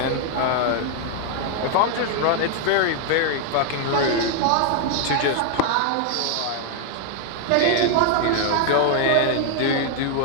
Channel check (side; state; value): both; different; correlation 0.00